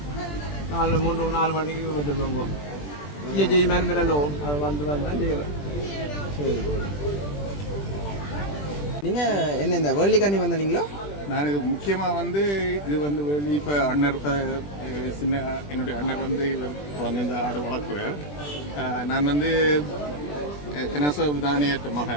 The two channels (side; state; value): right; late; 20 ms